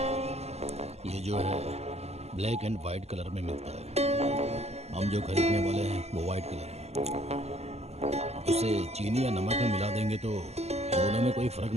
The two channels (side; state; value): left; late; 0.30 ms